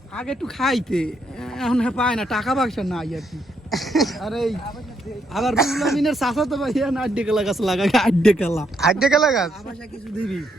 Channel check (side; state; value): both; normal; correlation 0.76